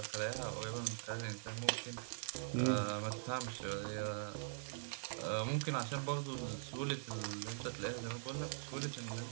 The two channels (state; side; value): silent; left; digital silence